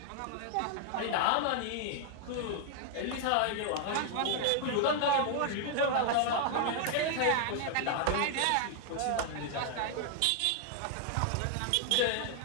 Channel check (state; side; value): different; both; correlation 0.00